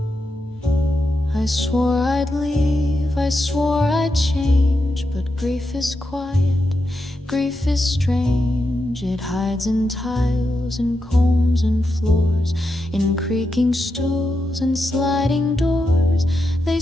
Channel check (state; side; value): normal; both; correlation 0.86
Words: I swore I'd leave, I swore I'd change, but grief is quiet, grief is strange. It hides in tiles and combs and floors, in creaking stools and sliding doors. They